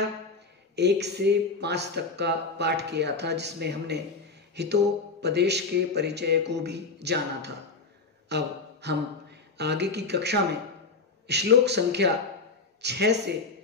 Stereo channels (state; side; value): quieter; right; 4.1 dB